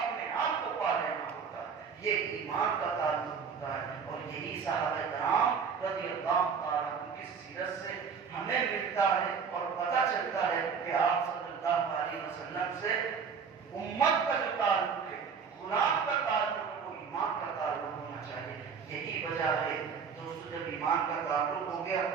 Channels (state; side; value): quieter; left; 6.2 dB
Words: آپ کو پا لینا ہوتا ہے. یہ ایمان کا تعلق ہوتا ہے. اور یہی صحابہ کرام رضی اللہ تعالیٰ عنہ کی سیرت سے ہمیں ملتا ہے اور پتہ چلتا ہے کہ آپ صلی اللہ علیہ وسلم سے امت کا جو تعلق ہے, غلام کا تعلق ہے, وہ ایمان کا تعلق ہونا چاہیے. یہی وجہ ہے دوستو, جب ایمان کا تعلق ہو گیا